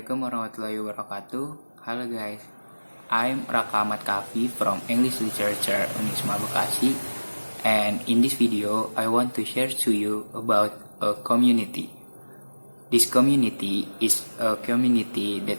warahmatullahi wabarakatuh. Halo guys, I'm Raka Ahmad Kafi from English Literature Unisma Bekasi, and in this video I want to share to you about a community. This community is a community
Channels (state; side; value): inverted; both; correlation -1.00